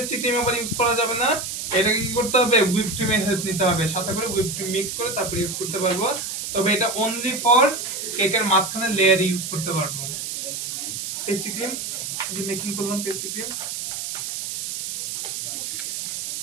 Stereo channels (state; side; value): noise; right; hiss, 5 dB below the sound